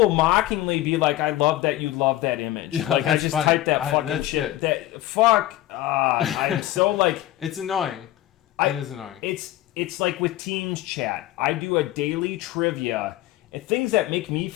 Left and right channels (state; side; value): quieter; right; 15.1 dB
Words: mockingly be like, I love that you love that image. Yeah, like, I just funny. type that fucking shit. I'm so, like... It's annoying. It is annoying. It's like with Teams chat. I do a daily trivia. And things that make me